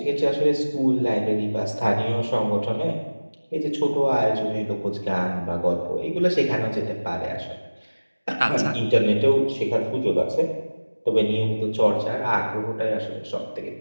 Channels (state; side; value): inverted; both; correlation -1.00